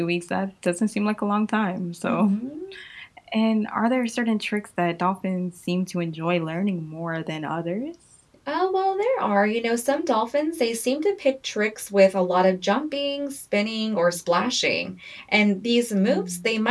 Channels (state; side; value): identical; both; correlation 1.00